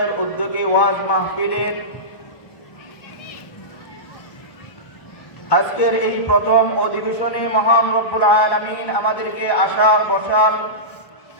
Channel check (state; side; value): late; right; 1.5 ms